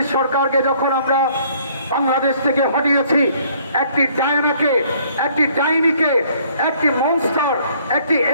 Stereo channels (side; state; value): both; inverted; correlation -0.61